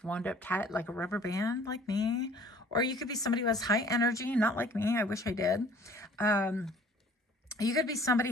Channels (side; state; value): both; normal; correlation 0.52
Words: wound up tight like a rubber band, like me. Or you could be somebody who has high energy, not like me. I wish I did. You could be